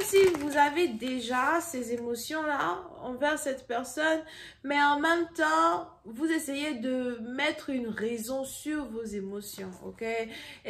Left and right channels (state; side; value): identical; both; correlation 1.00